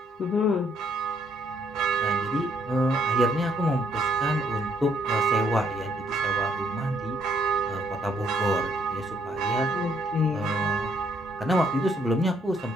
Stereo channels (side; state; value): both; normal; correlation 0.69